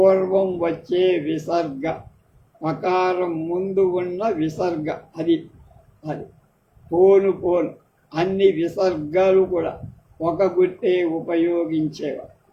వచ్చే విసర్గ, పకారం ముందు ఉన్న విసర్గ. అది పోను అన్ని విసర్గాలు కూడా ఒక గుర్తే ఉపయోగించేవారు.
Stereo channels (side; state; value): both; identical; correlation 1.00